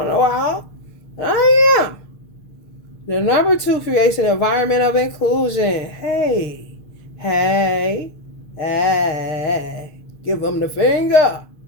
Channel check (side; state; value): right; late; 6.6 ms